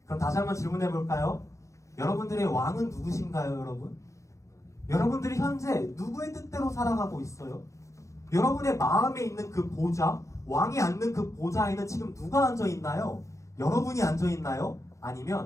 그럼 다시 한번 질문해 볼까요? 여러분들의 왕은 누구신가요, 여러분? 여러분들이 현재 누구의 뜻대로 살아가고 있어요? 여러분의 마음에 있는 그 보좌, 왕이 앉는 그 보좌에는 지금 누가 앉아 있나요? 여러분이 앉아 있나요?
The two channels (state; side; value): late; right; 0.15 ms